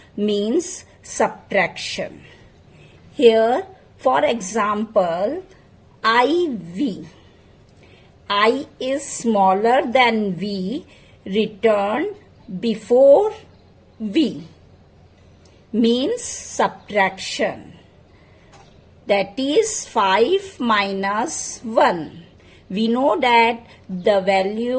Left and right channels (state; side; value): identical; both; correlation 1.00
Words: means subtraction. Here, for example, IV. I is smaller than V, returned before V, means subtraction. That is 5 minus 1. We know that the